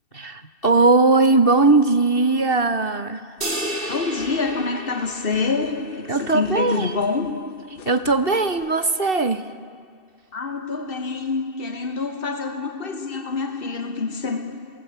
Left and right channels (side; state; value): right; late; 2.7 ms